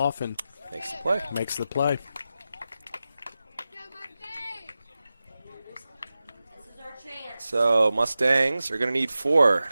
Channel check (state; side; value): inverted; both; correlation -0.93